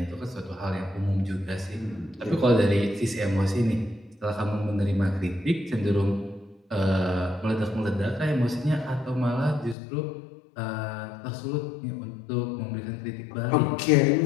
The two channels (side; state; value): right; drops out; at 9.8 s